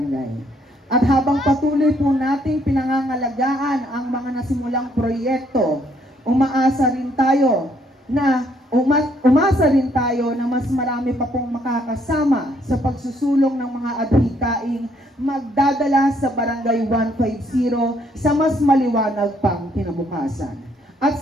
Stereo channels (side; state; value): both; normal; correlation 0.68